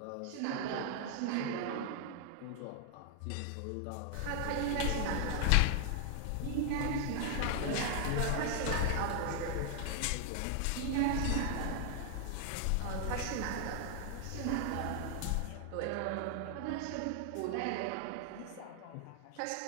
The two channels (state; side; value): different; both; correlation 0.00